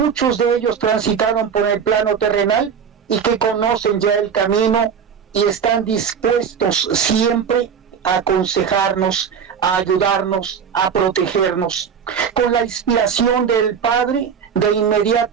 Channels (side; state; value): left; quieter; 7.1 dB